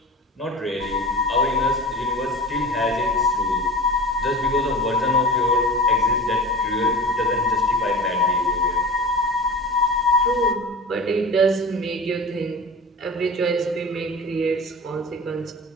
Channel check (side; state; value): both; normal; correlation 0.34